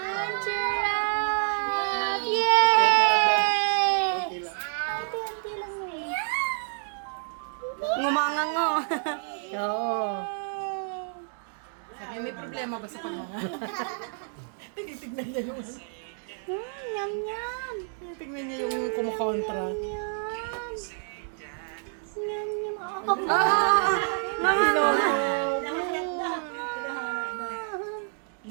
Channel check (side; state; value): left; silent; 56 dB below the other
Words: sarap! Yay! Ate lang mo eh. Ngumanga nga. Oo. May problema ba sa pagmanga? Tinitignan niya yung... Yum, yum. Tignan niya yung kumukontra. Yum. Yum, yum.